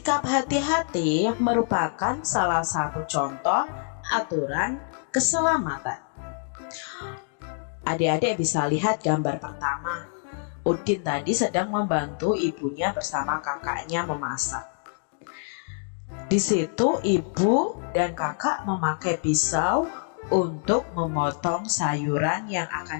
hati-hati merupakan salah satu contoh aturan keselamatan. Adik-adik bisa lihat gambar pertama. Udin tadi sedang membantu ibunya bersama kakaknya memasak. Di situ ibu dan kakak memakai pisau untuk memotong sayuran yang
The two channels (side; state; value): right; silent; 61 dB below the other